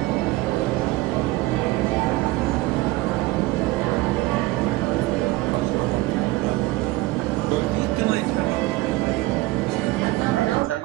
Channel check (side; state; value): left; quieter; 19.2 dB